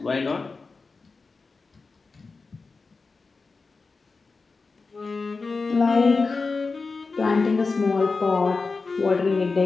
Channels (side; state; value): right; quieter; 4.2 dB